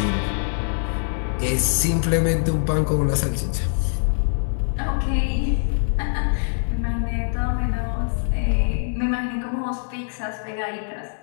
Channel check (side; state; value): right; silent; digital silence